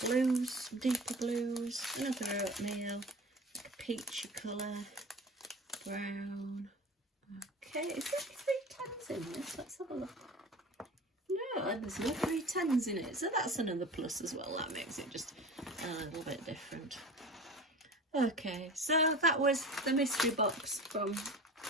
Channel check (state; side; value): normal; both; correlation 0.36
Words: blues, some deeper blues, another oatmeal, like a peachy colour, brown. Okay, is there 3 10s in this? Let's have a look. No, there's no 3 10s in it, so that's another plus as well. That makes it just a little bit different. Okay, so that was the mystery box from